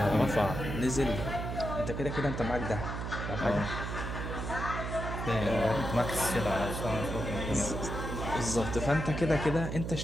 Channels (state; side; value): noise; right; hum, 4 dB below the sound